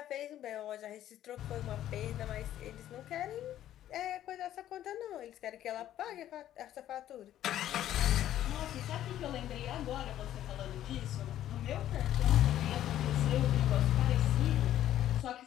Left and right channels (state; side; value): quieter; right; 12.2 dB